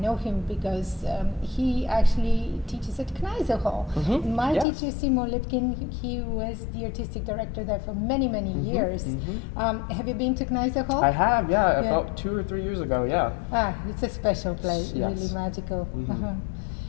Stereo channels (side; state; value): right; drops out; at 4.7 s